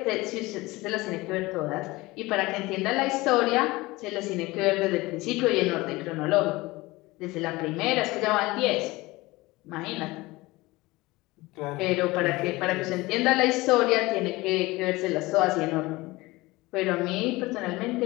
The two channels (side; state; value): right; quieter; 20.9 dB